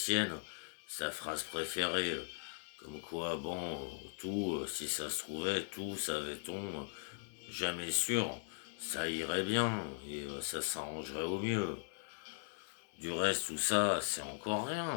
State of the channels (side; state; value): right; silent; digital silence